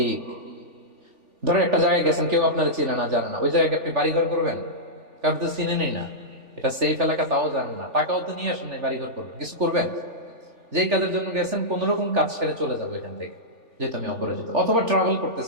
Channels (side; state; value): left; late; 3.4 ms